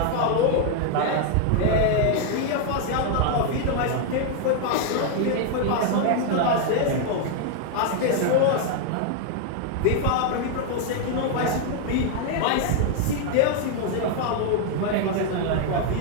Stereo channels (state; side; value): different; both; correlation 0.00